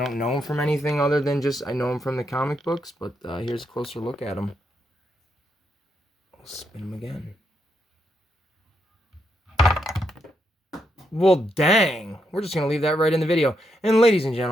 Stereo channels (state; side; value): normal; both; correlation 0.80